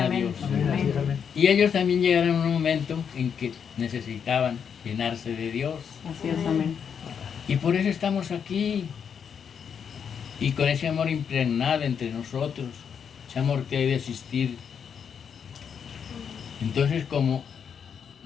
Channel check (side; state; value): right; quieter; 7.3 dB